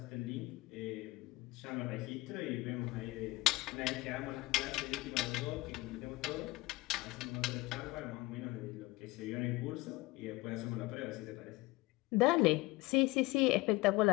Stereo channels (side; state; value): right; quieter; 20.7 dB